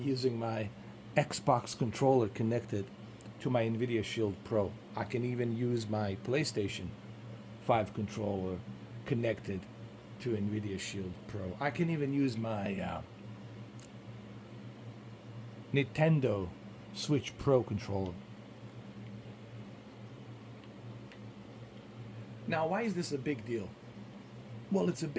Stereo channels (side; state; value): both; identical; correlation 1.00